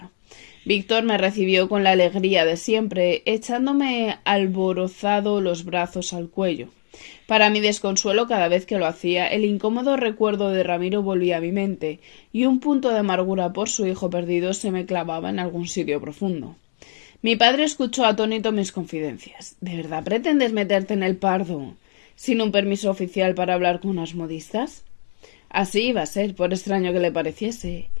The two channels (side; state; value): right; silent; digital silence